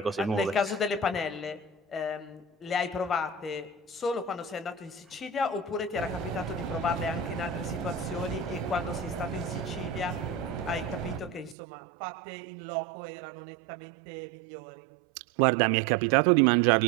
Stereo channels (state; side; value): drops out; left; at 11.6 s